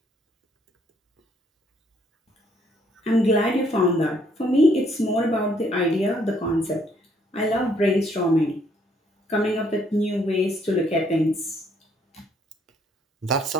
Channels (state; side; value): normal; both; correlation 0.67